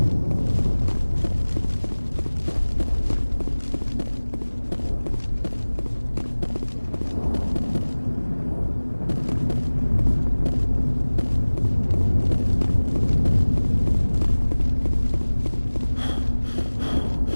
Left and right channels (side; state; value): both; inverted; correlation -1.00